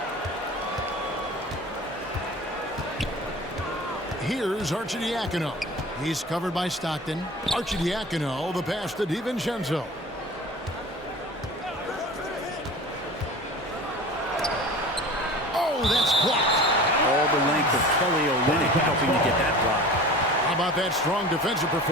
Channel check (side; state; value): both; normal; correlation 0.38